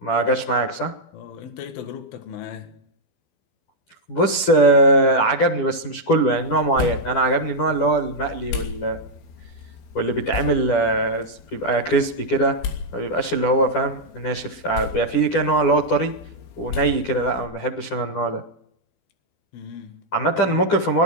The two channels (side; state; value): right; late; 12 ms